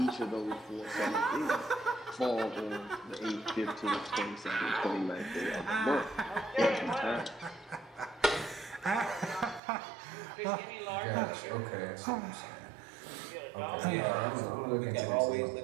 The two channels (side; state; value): left; drops out; at 9.6 s